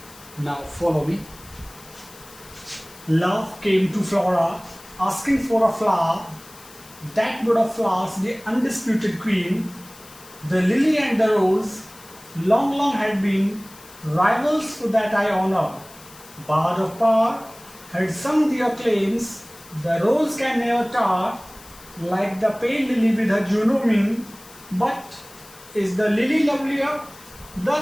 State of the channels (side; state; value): left; noise; hiss, 21 dB below the sound